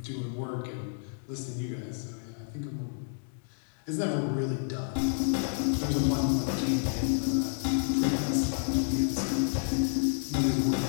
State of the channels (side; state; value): right; silent; digital silence